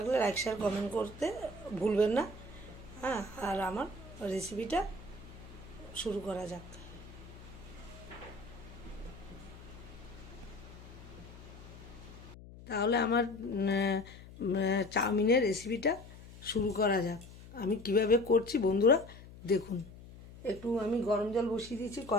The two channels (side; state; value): left; noise; hum, 17 dB below the sound